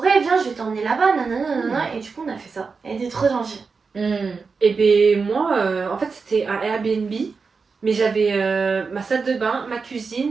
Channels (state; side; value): quieter; left; 4.9 dB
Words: viens, je vais t'emmener là-bas, nanana. Et du coup, on a fait ça. Elle était trop gentille. Et ben moi, en fait, c'était un Airbnb, mais j'avais ma salle de bain, ma